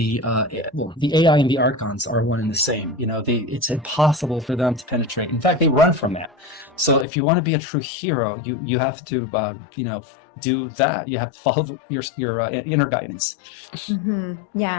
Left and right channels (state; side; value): drops out; right; at 7.1 s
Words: AI and the archons are one and the same. It's impossible for them to penetrate. In fact, they run from that. So if you want to be a true hero, you have to do that. You have to follow your inner guidance. Mm-hmm.